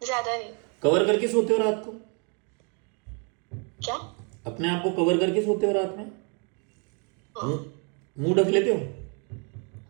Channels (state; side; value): quieter; left; 36.3 dB